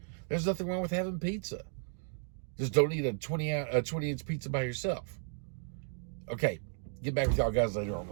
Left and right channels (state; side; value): silent; left; 55 dB below the other